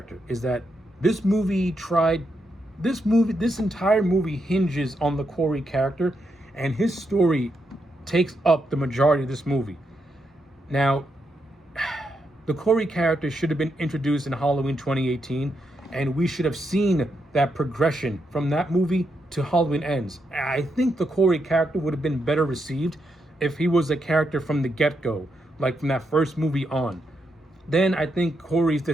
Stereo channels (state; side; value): normal; both; correlation 0.82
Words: is that this entire movie hinges on the Corey character, and his story takes up the majority of this movie. Now, the Corey character should have been introduced in Halloween 2018, and we should have seen that progression from that movie to Halloween Ends. I think the Corey character would have been better received if he was a character from the get-go, like from that first movie on. Then I think Corey's